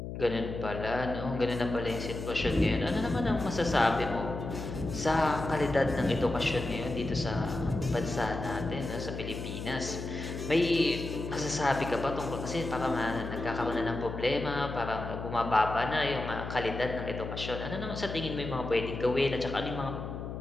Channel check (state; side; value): noise; left; hum, 7 dB below the sound